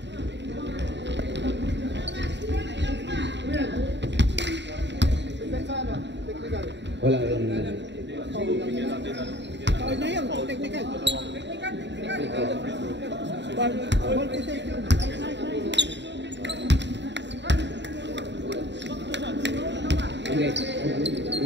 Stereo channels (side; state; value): left; late; 0.52 ms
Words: Wala yung... Foul na yun, technical. Ball possession. Hindi.